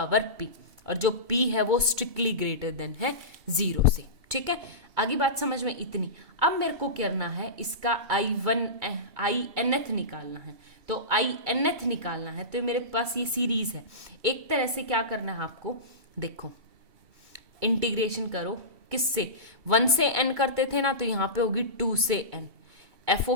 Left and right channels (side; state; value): left; late; 2.2 ms